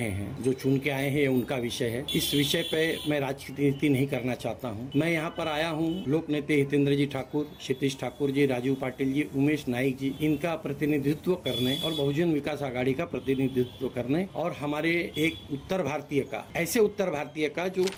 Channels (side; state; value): both; identical; correlation 1.00